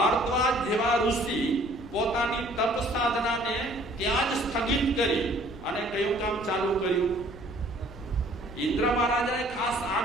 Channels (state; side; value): noise; left; rumble, 17 dB below the sound